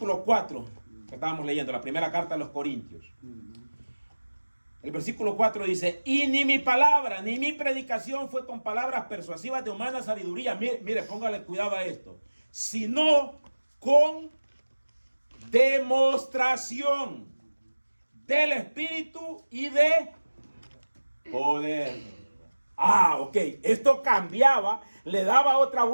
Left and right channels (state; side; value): inverted; both; correlation -1.00